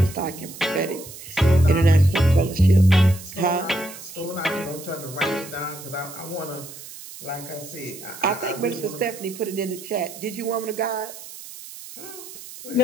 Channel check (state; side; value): noise; right; hiss, 14 dB below the sound